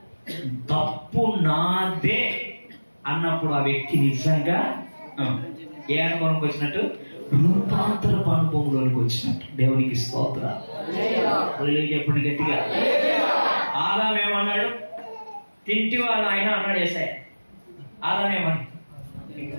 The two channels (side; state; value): both; inverted; correlation -1.00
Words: తప్పు నాదే అన్నప్పుడు ఆ వ్యక్తి నిజంగా ఏ అనుభవంకి వచ్చినట్టు? రూపాంతరపు అనుభవంలోనికి వచ్చినట్టు. దేవునికి స్తోత్రం చెప్పండి గట్టిగా. ఆదాం ఏమన్నాడు? తింటివా నాయన అన్నాడు యేసయ్య. ఆదాం ఏమన్నా?